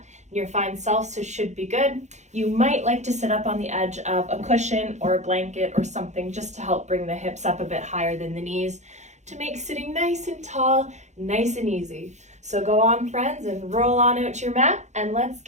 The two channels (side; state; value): left; late; 0.34 ms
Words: and your fine self, so should be good. You might like to sit up on the edge of a cushion or a blanket or something just to help bring the hips up a bit higher than the knees to make sitting nice and tall, nice and easy. So go on, friends, and roll on out your mat and let's